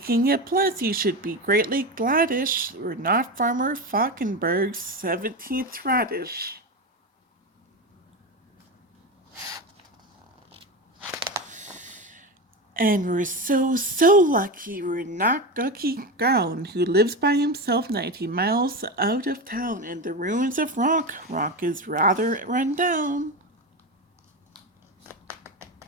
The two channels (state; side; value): normal; both; correlation 0.20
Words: of plants, you should be greatly gladish. We're not Farmer Falkenberg's 17th radish. And we're so lucky we're not Gucky Gown, who lives by himself 90 miles out of town in the ruins of Rock. Rock is rather run down.